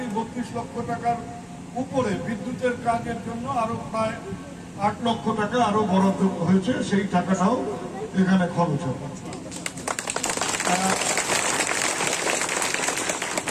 টাকার উপরে বিদ্যুতের কাজের জন্য আরো প্রায় 8 লক্ষ টাকা আরো বরাদ্দ হয়েছে, সেই টাকাটাও এখানে খরচ হবে।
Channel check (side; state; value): both; identical; correlation 1.00